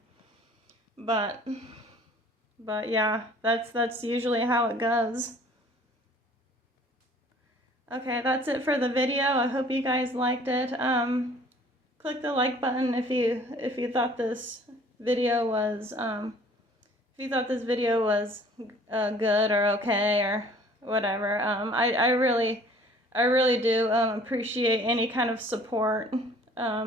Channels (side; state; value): both; normal; correlation 0.53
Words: But yeah, that's usually how it goes. Okay, that's it for the video. I hope you guys liked it. Click the like button if you thought this video was good or okay or whatever. I really do appreciate any kind of support